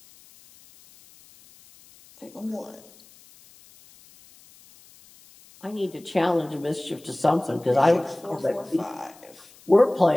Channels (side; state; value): left; noise; hiss, 25 dB below the sound